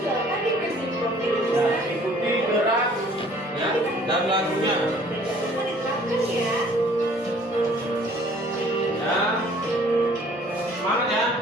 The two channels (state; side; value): normal; both; correlation 0.55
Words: silakan dikasih profil Ya, lulusan. ikuti gerak ya dan lagunya. Jangan diterapkan ya. Ya, semangat ya.